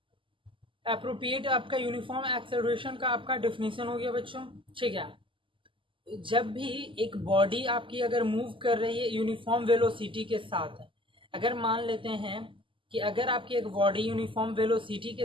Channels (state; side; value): late; left; 0.25 ms